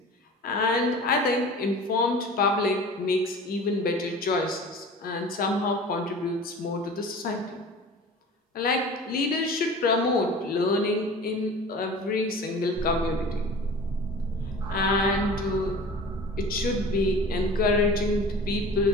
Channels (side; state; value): both; normal; correlation 0.40